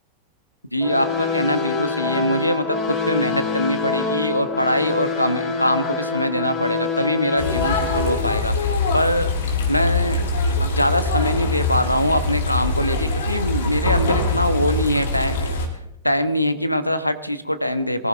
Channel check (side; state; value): both; inverted; correlation -0.56